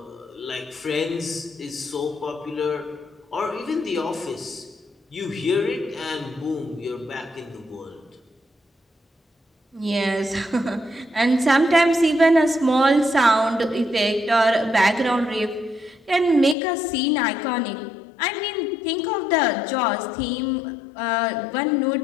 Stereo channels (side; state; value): right; drops out; at 16.6 s